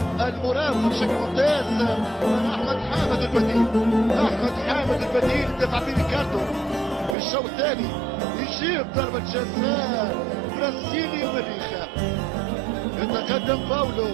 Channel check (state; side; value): drops out; left; at 7.2 s